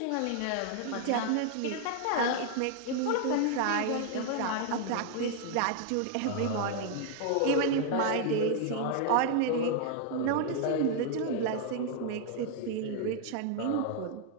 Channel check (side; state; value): both; different; correlation 0.00